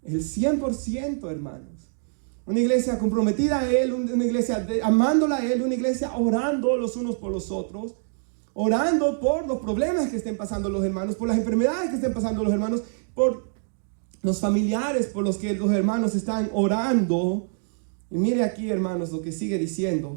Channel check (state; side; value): silent; left; digital silence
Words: el 100%, hermanos. Una iglesia comprometida a Él, una iglesia amándola a Él, una iglesia orando los unos por los otros, orando por los problemas que estén pasando los hermanos, por las enfermedades que estén pasando los hermanos, por los familiares por los que los hermanos están orando. Y mire aquí, hermanos, lo que sigue